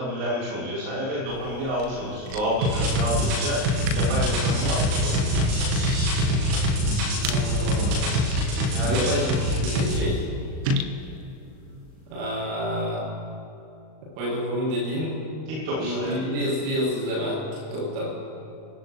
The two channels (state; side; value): late; left; 38 ms